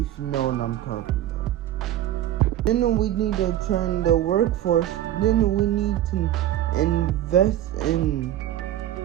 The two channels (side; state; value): left; quieter; 12.5 dB